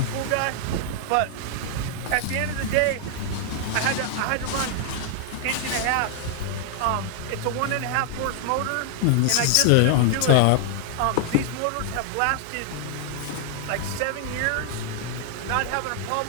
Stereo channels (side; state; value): both; different; correlation 0.00